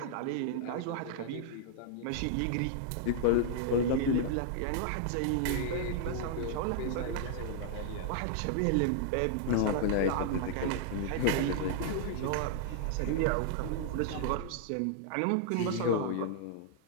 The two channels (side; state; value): both; different; correlation -0.01